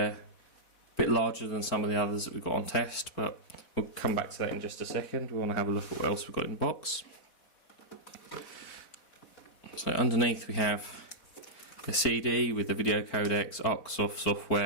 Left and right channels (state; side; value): late; right; 4.2 ms